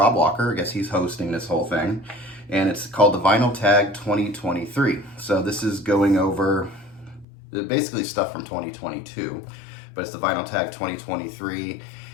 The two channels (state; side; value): drops out; right; at 7.2 s